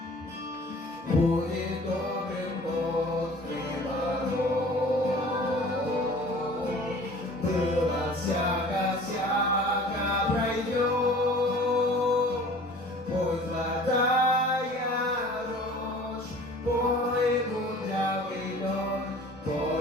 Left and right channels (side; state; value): both; normal; correlation 0.46